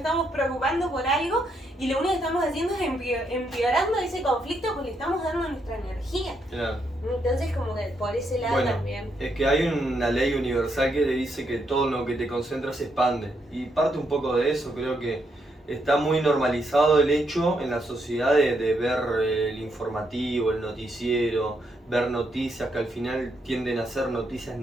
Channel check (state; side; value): normal; both; correlation 0.78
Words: preocupando por algo y lo único que estamos haciendo es empeorando ese conflicto porque le estamos dando nuestra energía. Claro. Entonces, como que por ese lado Bueno, también. es que hay una ley universal que le dice que todo lo que te concentras se expande. Y parte un poco de eso, creo que está muy normalizado el hecho en la sociedad de ver el informativo, el noticiero, ver noticias que al final tienden a ser noticias